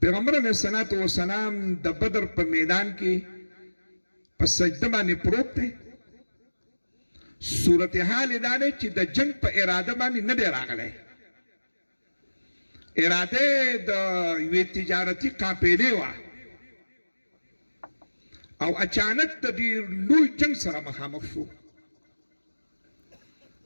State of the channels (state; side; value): inverted; both; correlation -1.00